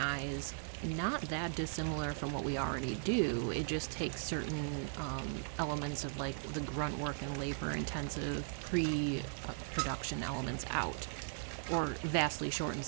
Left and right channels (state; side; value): silent; left; digital silence